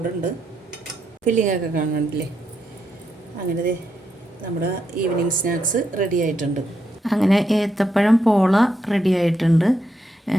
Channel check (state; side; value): normal; both; correlation 0.81